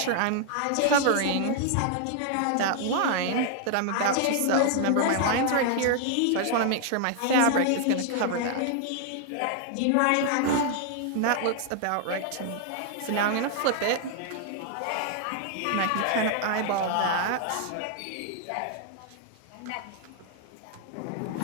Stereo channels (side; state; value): both; different; correlation 0.00